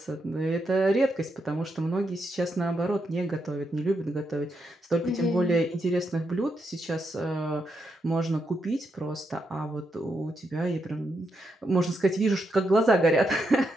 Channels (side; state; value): both; normal; correlation 0.82